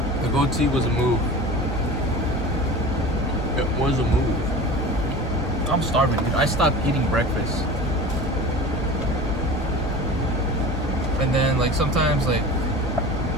The goatee was a move. It was a move. I'm starving, dude. I stopped eating breakfast. And then, like, sometimes, like,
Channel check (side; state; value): both; normal; correlation 0.36